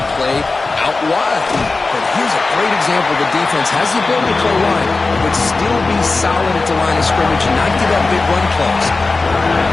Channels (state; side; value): quieter; right; 3.7 dB